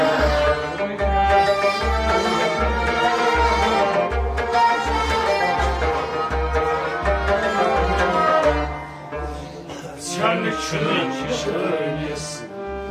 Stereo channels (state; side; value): identical; both; correlation 1.00